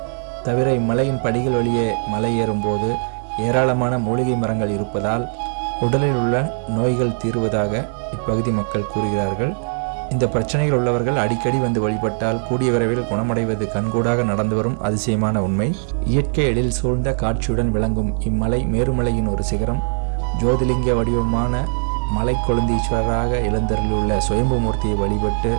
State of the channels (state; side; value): silent; left; 61 dB below the other